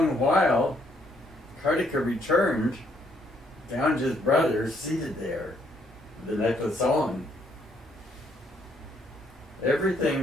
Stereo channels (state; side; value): normal; both; correlation 0.70